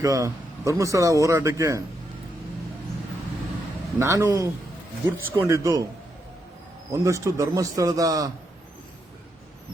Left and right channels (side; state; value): both; normal; correlation 0.81